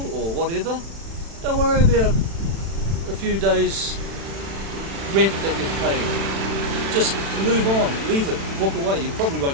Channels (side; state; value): left; late; 36 ms